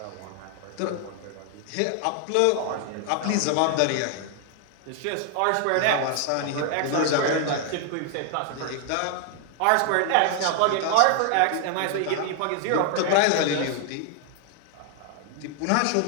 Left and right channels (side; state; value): both; different; correlation 0.00